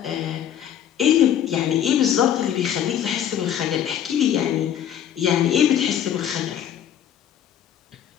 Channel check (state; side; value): quieter; right; 10.0 dB